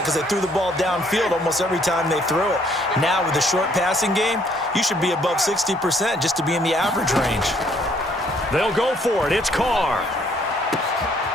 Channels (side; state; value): both; normal; correlation 0.65